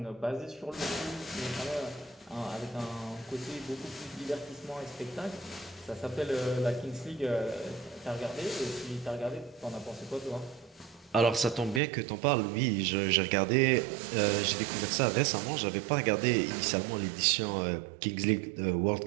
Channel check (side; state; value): left; drops out; at 11.8 s